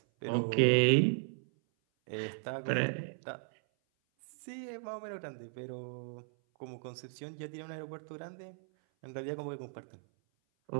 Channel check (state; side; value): silent; left; 54 dB below the other